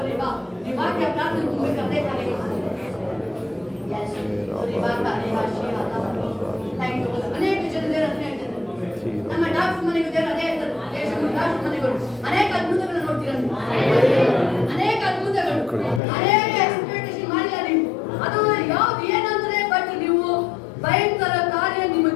ವಾಕ್ಯ ಪ್ರಾರ್ಥನೆ ತುಂಬಬೇಕಾದ್ರೆ ಅನೇಕ ಜನ ನಮ್ಮ ಡಾಕ್ಟರ್ ಮನೆಗೂ ಅದೇ ಡಾಕ್ಟರ್ ಮನೆಗಳು ಅನೇಕ ಅದ್ಭುತಗಳನ್ನು ನೋಡ್ತೀರ. ಅನೇಕ ಅದ್ಭುತಗಳು, ಅನೇಕ ಎಕ್ಸ್ಪೆಕ್ಟೇಷನ್ ಮಾಡಿಲ್ಲ ನೀವು. ಅದು ಯಾವ್ದು ಏನಂದ್ರೆ, ಬಟ್ ನೀವು ಭಯಂಕರ ಕಾರ್ಯ ನಿಮ್ಮ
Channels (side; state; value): right; drops out; at 16.0 s